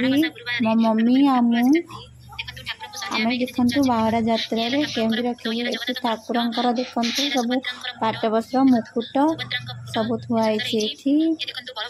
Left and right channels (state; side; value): identical; both; correlation 1.00